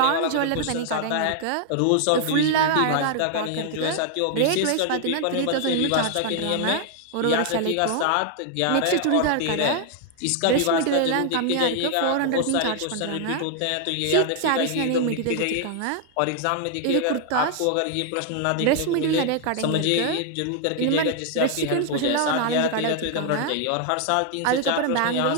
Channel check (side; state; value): both; different; correlation 0.00